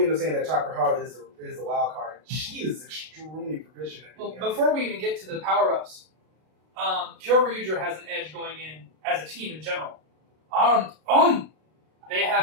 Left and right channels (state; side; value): late; left; 32 ms